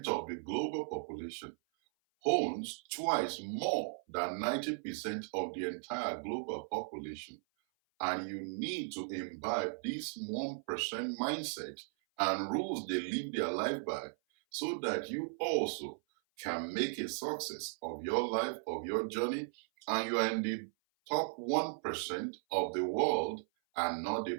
of the global population owns twice more than 90% of the entire global population. And you need to imbibe this 1% mindset and rules they live their life by so that you also can make a success of your life, of your journey, and you are in the top 1% of the world and not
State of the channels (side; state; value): left; silent; 53 dB below the other